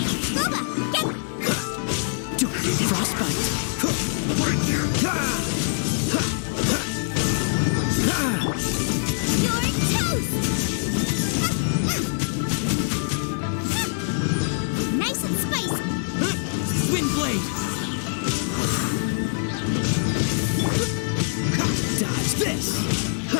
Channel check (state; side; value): silent; right; 63 dB below the other